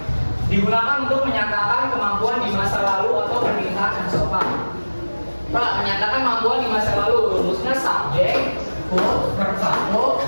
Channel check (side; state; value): both; inverted; correlation -1.00